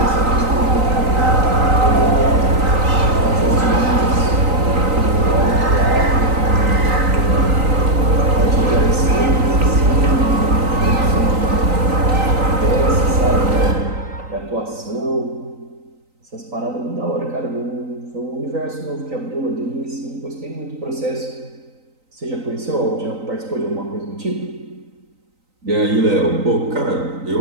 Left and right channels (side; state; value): left; late; 3.9 ms